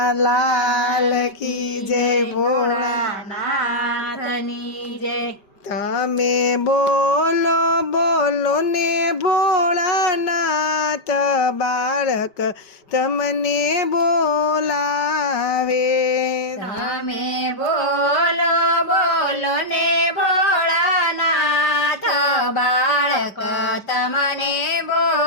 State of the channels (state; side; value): late; right; 5.1 ms